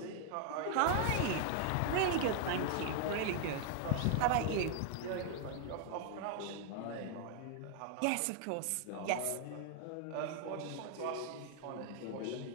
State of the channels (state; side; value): different; both; correlation 0.00